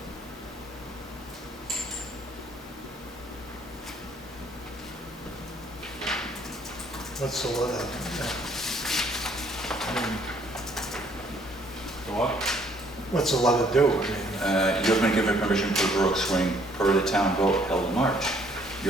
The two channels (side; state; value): both; normal; correlation 0.63